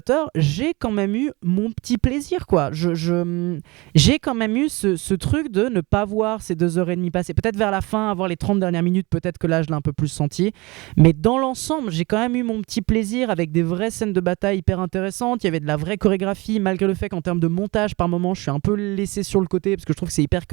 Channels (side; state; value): left; quieter; 24.0 dB